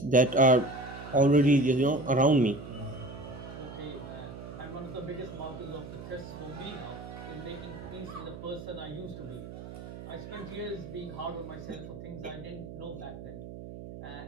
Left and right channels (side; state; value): right; noise; hum, 12 dB below the sound